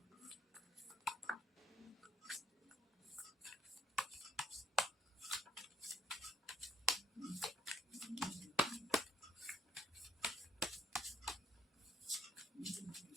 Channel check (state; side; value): normal; both; correlation 0.64